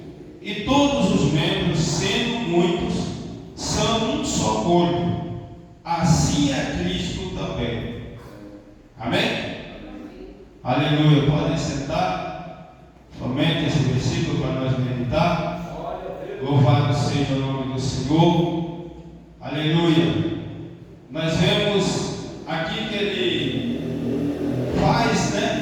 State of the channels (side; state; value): both; identical; correlation 1.00